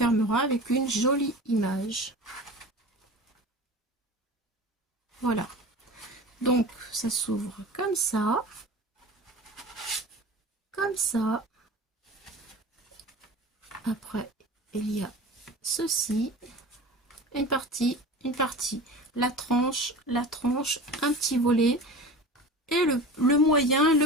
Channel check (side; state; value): both; normal; correlation 0.35